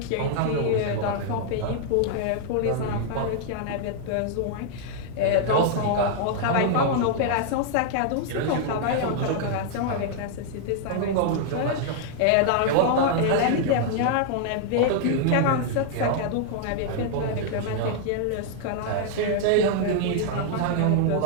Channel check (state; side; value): different; both; correlation -0.01